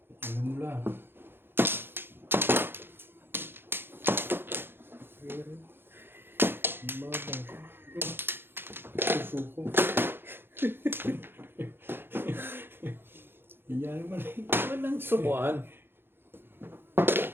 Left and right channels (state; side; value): late; left; 0.10 ms